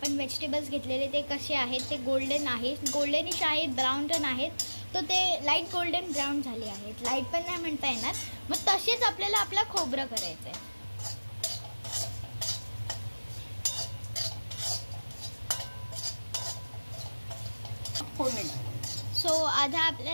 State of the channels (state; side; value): inverted; both; correlation -1.00